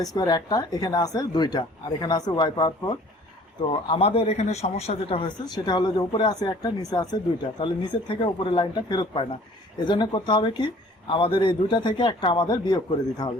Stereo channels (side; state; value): both; normal; correlation 0.52